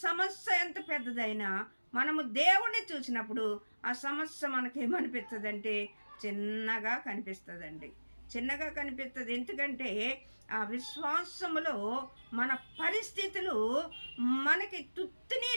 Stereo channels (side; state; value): both; inverted; correlation -1.00